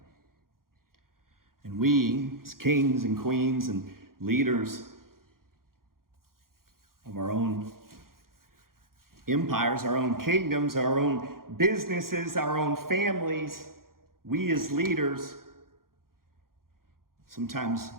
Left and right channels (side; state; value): left; late; 0.92 ms